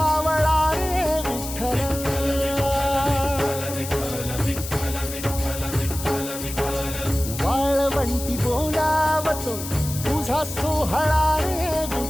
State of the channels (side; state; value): left; noise; hiss, 9 dB below the sound